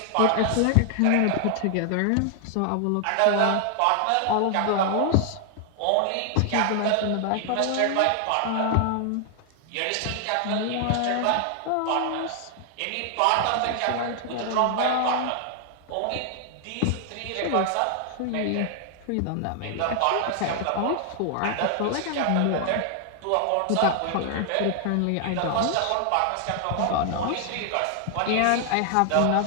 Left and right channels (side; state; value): both; different; correlation 0.00